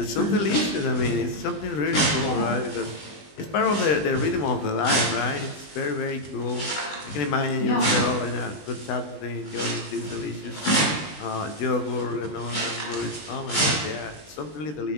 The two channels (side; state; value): right; late; 20 ms